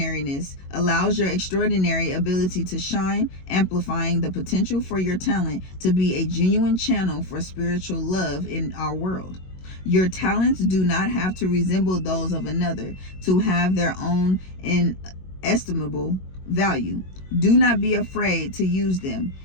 allows your extraordinary ability to shine, amplifying the potential for your talent to be a genuine channel for spiritual love in our world. Your talents do not have to resemble those of another to have their own inestimable value. Do not be afraid to use them.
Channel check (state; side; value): late; right; 22 ms